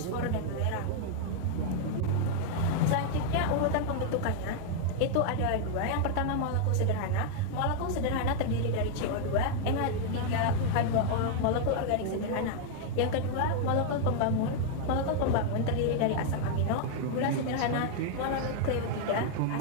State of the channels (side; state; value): both; different; correlation 0.00